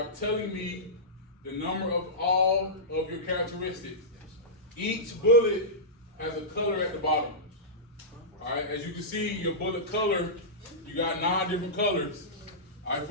telling me the number of all of your characteristics. Each bullet has a color at the bottom. All right, as you can see, your bullet color, you got 9 different colors. All right,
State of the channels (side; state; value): both; normal; correlation -0.16